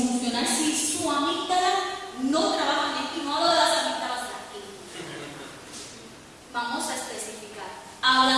si su amígdala no trabaja bien, y no hablo de las amígdalas de aquí. Vamos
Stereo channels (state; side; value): identical; both; correlation 1.00